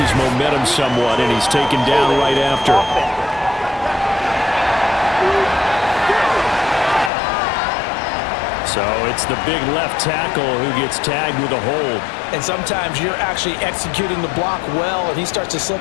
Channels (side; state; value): right; drops out; at 7.1 s